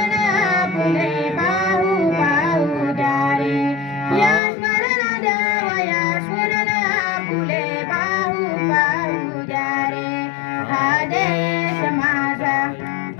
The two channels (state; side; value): drops out; right; at 4.4 s